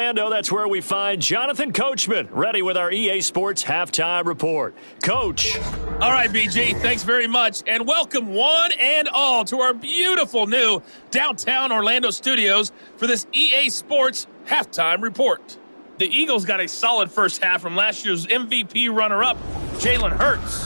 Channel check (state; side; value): inverted; both; correlation -1.00